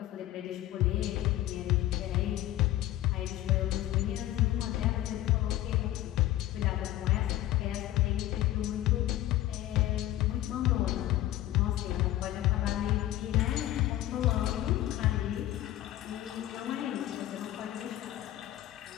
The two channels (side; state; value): right; quieter; 14.5 dB